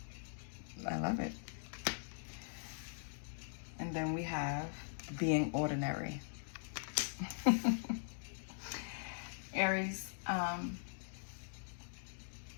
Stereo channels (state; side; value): silent; right; digital silence